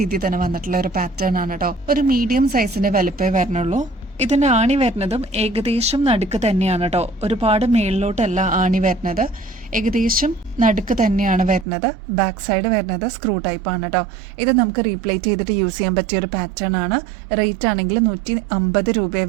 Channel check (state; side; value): drops out; left; at 11.7 s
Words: തന്നെ വന്നിട്ടുള്ള ഒരു പാറ്റേൺ ആണ് കേട്ടോ. ഒരു മീഡിയം സൈസിന്റെ വലുപ്പേ വരണുള്ളൂ. ഇതിന്റെ ആണി വരുന്നതും ഏകദേശം നടുക്ക് തന്നെയാണ് കേട്ടോ. ഒരുപാട് മേളിലോട്ടല്ല ആണി വരുന്നത്. ഏകദേശം നടുക്ക് തന്നെയാണ് വരുന്നത്. ബാക്ക് സൈഡ് വരുന്നത് സ്ക്രൂ ടൈപ്പ് ആണ് കേട്ടോ. ഇത് നമുക്ക് റീപ്ലേറ്റ് ചെയ്തിട്ട് യൂസ് ചെയ്യാൻ പറ്റിയ ഒരു പാറ്റേൺ ആണ്. റേറ്റ് ആണെങ്കിൽ 150 രൂപയെ